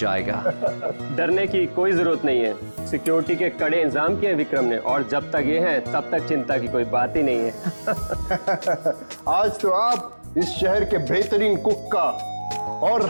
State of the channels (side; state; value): both; inverted; correlation -1.00